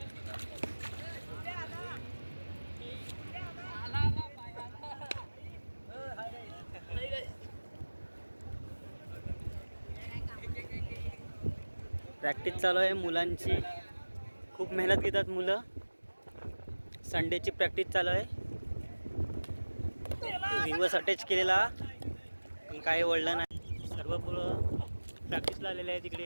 प्रॅक्टिस चालू आहे मुलांची. खूप मेहनत घेतात मुलं. संडेची प्रॅक्टिस चालू आहे. रिव्हर्स अटॅच केलेला पण काही वळलं नाही. सर्व मुलं प्रॅक्टिसला आलेले आहे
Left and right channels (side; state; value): both; inverted; correlation -1.00